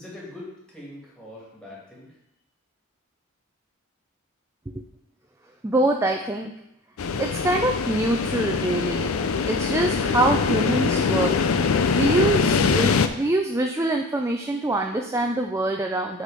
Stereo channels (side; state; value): both; normal; correlation 0.40